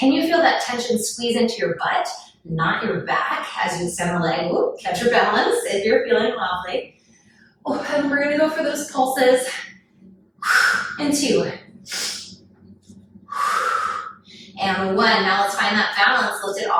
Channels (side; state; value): both; identical; correlation 1.00